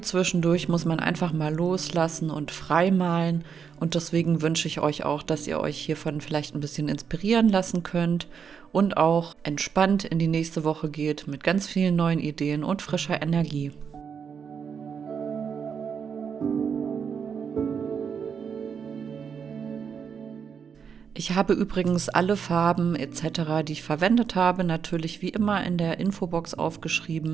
zwischendurch muss man einfach mal loslassen und frei malen. Und deswegen wünsche ich euch auch, dass ihr euch hiervon vielleicht ein bisschen inspirieren lassen könnt und auch entspannt in die nächste Woche geht mit ganz vielen neuen Ideen und frischer Energie. Ich habe übrigens alle Farben etc., die ich verwendet habe, natürlich wie immer in der Infobox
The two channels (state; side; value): quieter; left; 6.8 dB